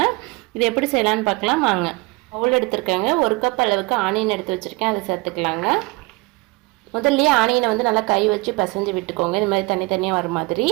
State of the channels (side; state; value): left; quieter; 24.9 dB